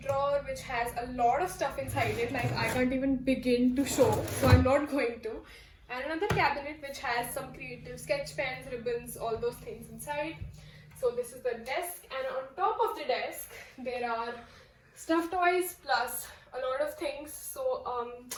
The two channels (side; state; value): both; identical; correlation 1.00